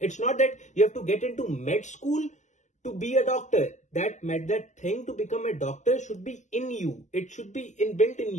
not that you have to get into med school to be a doctor. That thing to become a doctor should be in you. It should be inbuilt in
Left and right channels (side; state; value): right; late; 0.34 ms